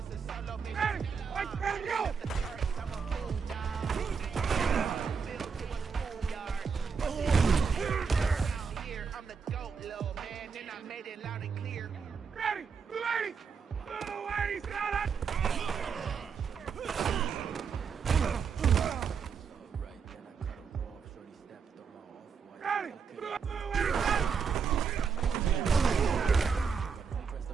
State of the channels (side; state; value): left; quieter; 6.0 dB